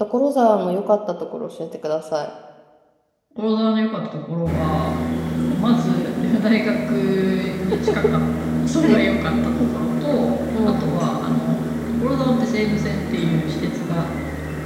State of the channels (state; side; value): identical; both; correlation 1.00